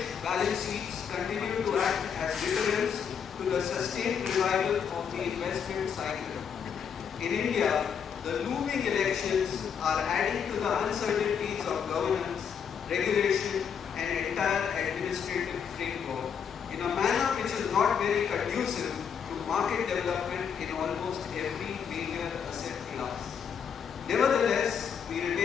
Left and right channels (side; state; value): right; quieter; 7.3 dB